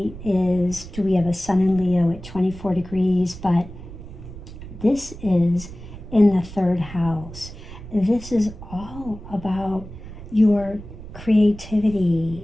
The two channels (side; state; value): right; noise; rumble, 14 dB below the sound